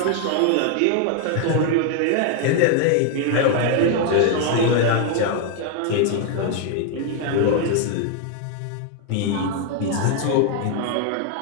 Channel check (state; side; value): different; both; correlation 0.01